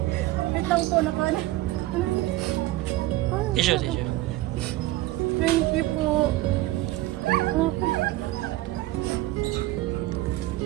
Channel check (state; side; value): quieter; left; 16.8 dB